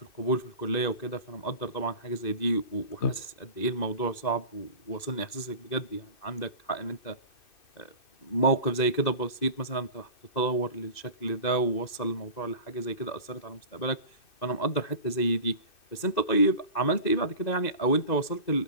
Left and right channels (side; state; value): right; late; 2.6 ms